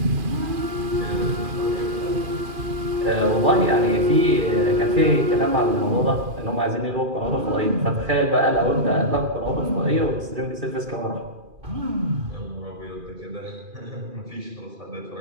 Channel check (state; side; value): late; left; 2.4 ms